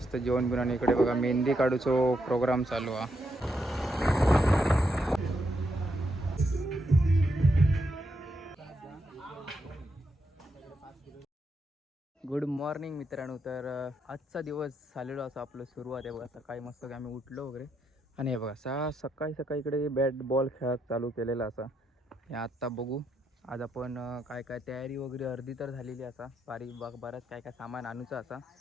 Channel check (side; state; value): both; normal; correlation 0.80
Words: जेवण बिवून आणि इकडे बघा मेहंदी काढूचो प्रोग्राम चालू हा. गुड मॉर्निंग मित्रांनो. तर आजचा दिवस झालेलो असं आपलं सुरुवात आहे बघा. सकाळी मस्त आम्ही उठलो वगैरे आणि हे बघा सकाळी सकाळी इकडे बॅट बॉल खेळत चालू केलेला असा. हे आत्ता बघू आज आपण काय काय तयारी वगैरे अर्धी तर झालेली असा. बरंच काय काय सामान आणूचं असा.